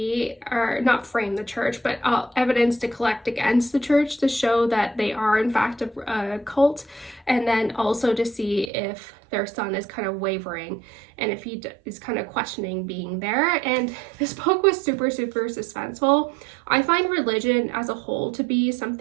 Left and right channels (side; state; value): left; drops out; at 8.7 s